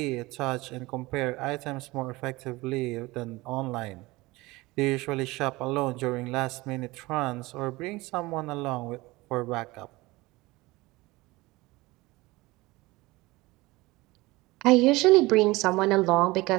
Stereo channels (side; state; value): left; quieter; 21.2 dB